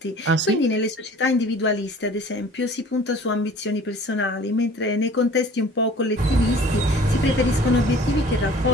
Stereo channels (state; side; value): normal; both; correlation 0.47